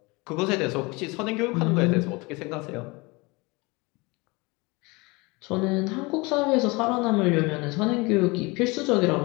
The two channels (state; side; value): quieter; right; 25.7 dB